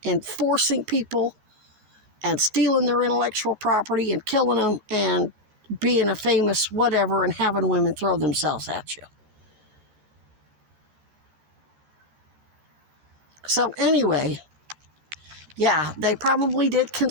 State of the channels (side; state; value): left; late; 13 ms